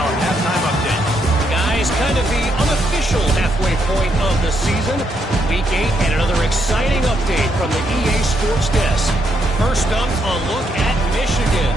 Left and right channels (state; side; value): normal; both; correlation 0.77